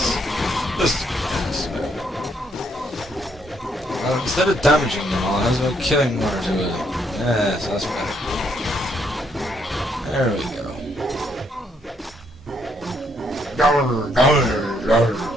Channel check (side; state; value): both; normal; correlation 0.72